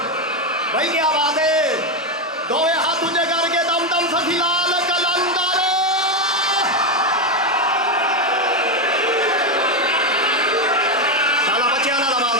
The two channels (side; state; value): both; normal; correlation 0.08